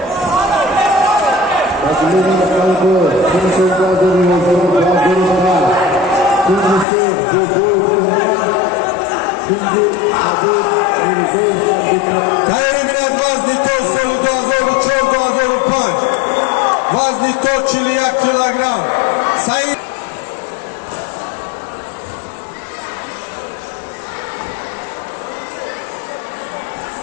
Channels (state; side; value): drops out; right; at 6.9 s